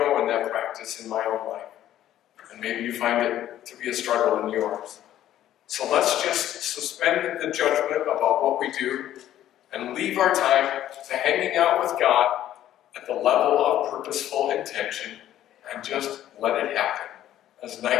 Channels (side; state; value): right; quieter; 12.3 dB